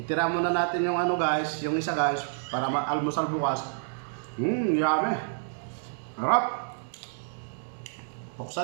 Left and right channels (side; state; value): left; silent; digital silence